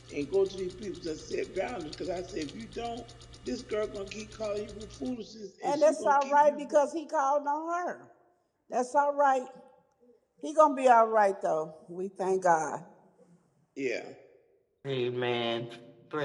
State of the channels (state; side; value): identical; both; correlation 1.00